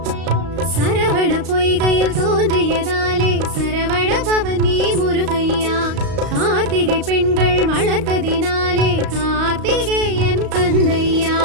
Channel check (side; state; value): left; late; 35 ms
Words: பவனி முருகையா கார்த்திகை பெண்கள் வளர்த்ததினாலே கார்த்திகேயன் கந்தையா